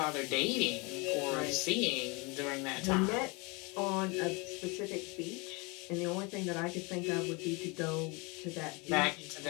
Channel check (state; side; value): quieter; right; 28.4 dB